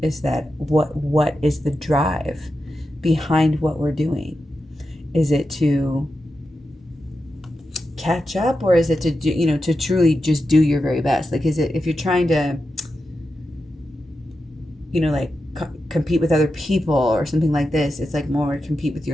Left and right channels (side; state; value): both; normal; correlation 0.89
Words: is that what is the drive behind what we're doing? Is it to catch up, or is it to do, to truly just do your very best? Like, is it, if you're trying to, like compete with other people or something like this, it's like more compete with